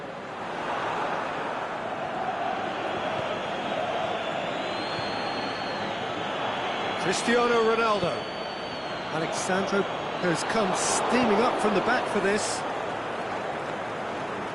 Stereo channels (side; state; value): both; identical; correlation 1.00